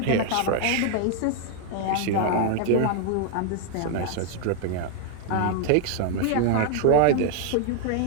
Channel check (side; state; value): both; different; correlation 0.00